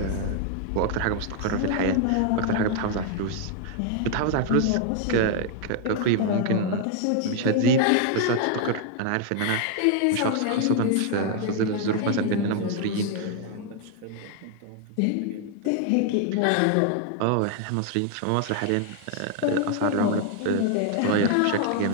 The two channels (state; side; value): different; both; correlation 0.00